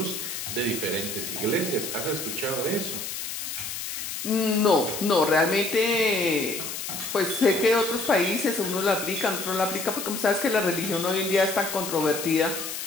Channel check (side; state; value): left; noise; hiss, 6 dB below the sound